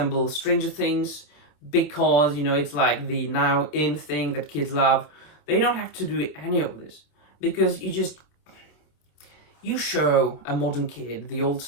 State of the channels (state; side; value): late; right; 27 ms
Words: Stranger Things because, you know, it's like the now in thing that kids love. They don't have to do any of this because you show a modern kid the old